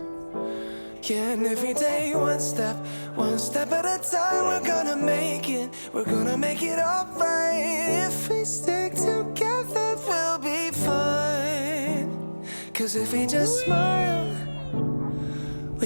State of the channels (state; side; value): inverted; both; correlation -1.00